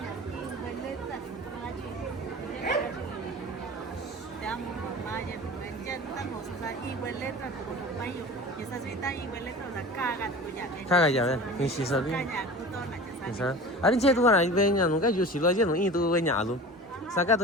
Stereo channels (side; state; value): both; normal; correlation 0.36